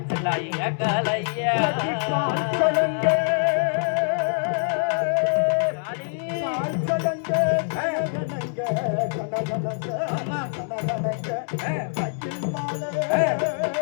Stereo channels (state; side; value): silent; right; digital silence